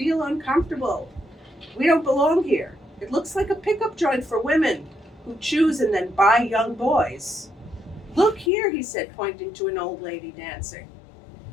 uncomfortable. We don't belong here. It looks like a pickup joint for women who choose and then buy young boys." "Look here," he said, pointing to an old lady dancing.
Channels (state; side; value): drops out; right; at 8.5 s